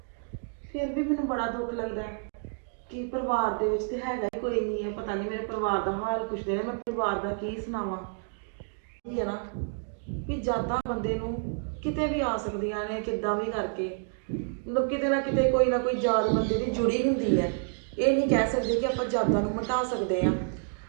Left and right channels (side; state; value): left; silent; 58 dB below the other